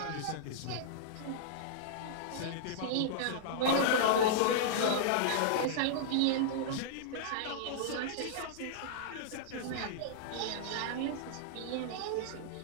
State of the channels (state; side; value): different; both; correlation -0.02